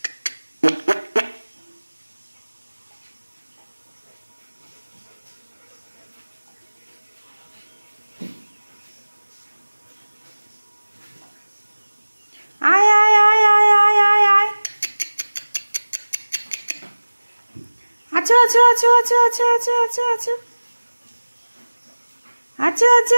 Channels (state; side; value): inverted; both; correlation -1.00